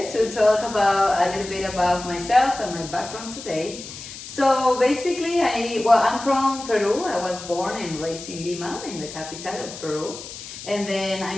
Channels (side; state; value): left; noise; hiss, 12 dB below the sound